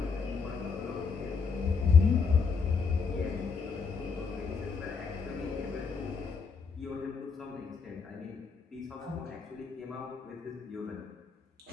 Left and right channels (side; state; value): right; quieter; 5.3 dB